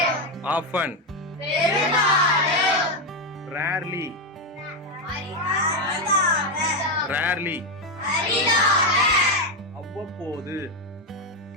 often, rarely, rarely, அவ்வப்போது,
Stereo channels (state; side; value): normal; both; correlation 0.07